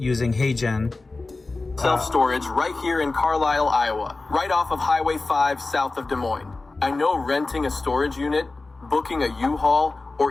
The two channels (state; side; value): quieter; right; 3.5 dB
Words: HeyGen. Self-storage right here in Carlisle, Iowa, right off of Highway 5 south of Des Moines. I know renting a storage unit, booking a U-Haul,